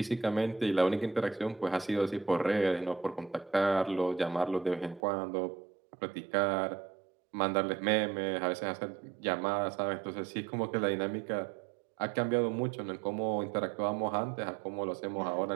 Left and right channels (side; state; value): left; drops out; at 5.0 s